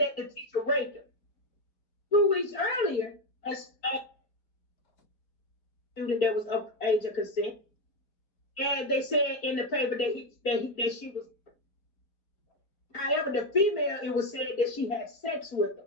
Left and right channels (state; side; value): late; right; 4.5 ms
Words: the teacher raped her. 2 weeks earlier, the student that was of age of consent. And they said in the paper that she was. However, the female, it was said that she had sex with them.